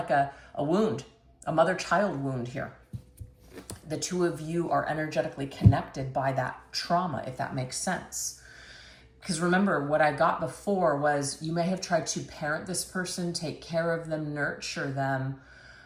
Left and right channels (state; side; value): identical; both; correlation 1.00